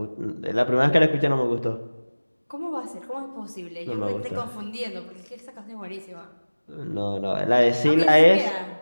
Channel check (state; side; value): inverted; both; correlation -1.00